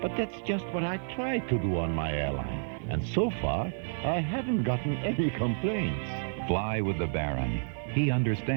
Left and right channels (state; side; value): silent; left; 58 dB below the other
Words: But that's just what I try to do on my airline. And so far, I haven't gotten any complaints. Fly with the Baron. He